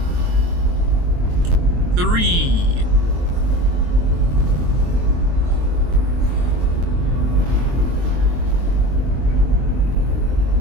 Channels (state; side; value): late; left; 23 ms